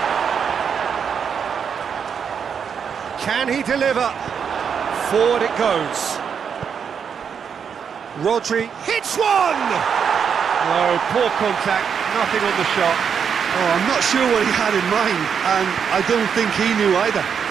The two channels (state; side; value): quieter; left; 7.1 dB